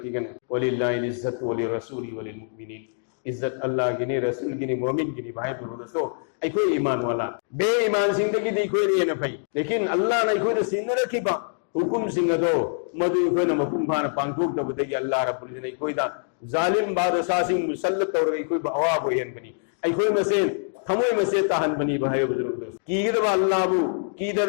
गने वलिल्लाहि इज्जत वलि रसूली वलिल मुमिनीन इज्जत अल्लाह की ने रसूल की ने मोमिन की ने भाई बुरो दोस्तों आई कोई ईमान वाला बे ईमान जिंदगी दी कोई नहीं है भाई लेकिन अल्लाह ने कोई सिंह रखी बा हुकुम सिंह दो मधु कोई न मकुम खान पांकुल तो बतेगी अल्लाह रब्बुल इज्जत ने कोई दा जालिम बादशाह सिंह मुसल्लत और कोई बवा बोयन बनी आई कोई मसे थमो मसे तहन बनी भाई बुजुर्ग दोस्त कीद अल्लाह बु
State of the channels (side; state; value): right; silent; digital silence